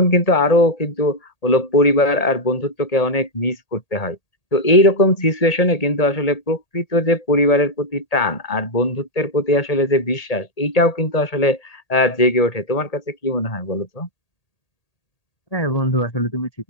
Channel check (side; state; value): right; late; 1.8 ms